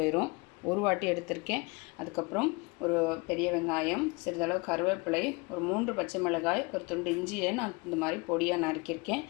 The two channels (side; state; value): right; quieter; 27.7 dB